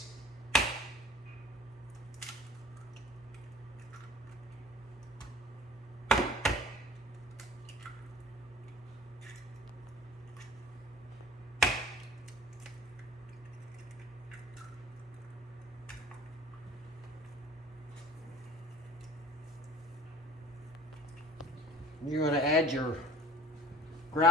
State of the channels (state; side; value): normal; both; correlation 0.45